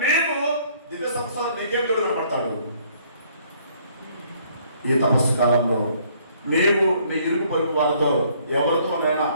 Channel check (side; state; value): both; inverted; correlation -0.63